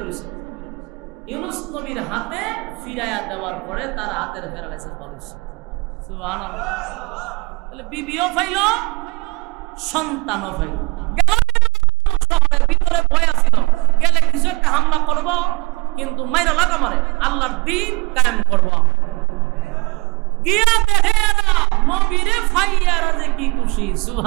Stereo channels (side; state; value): left; quieter; 25.2 dB